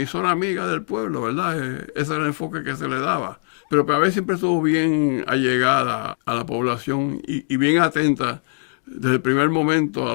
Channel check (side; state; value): right; silent; 56 dB below the other